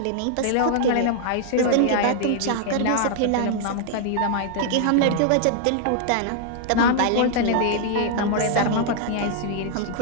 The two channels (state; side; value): different; both; correlation -0.01